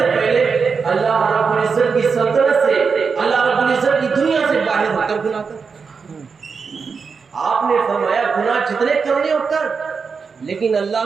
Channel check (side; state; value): left; quieter; 5.4 dB